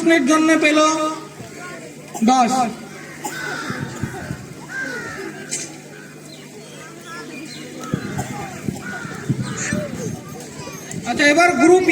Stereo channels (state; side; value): identical; both; correlation 1.00